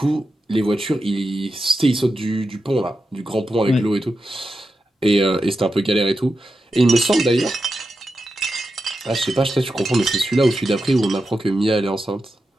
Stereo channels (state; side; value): normal; both; correlation 0.89